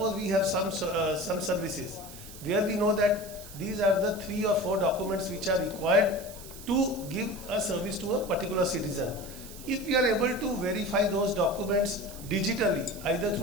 we have some services where we know that these are the 3 or 4 documents which are required to give a service to a particular citizen. If we are able to verify those documents digitally, either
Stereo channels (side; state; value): right; noise; hiss, 16 dB below the sound